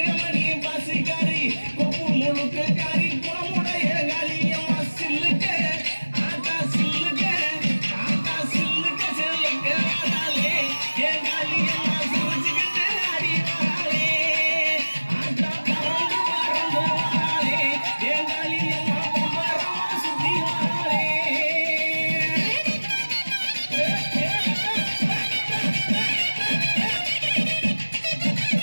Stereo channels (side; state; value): both; inverted; correlation -1.00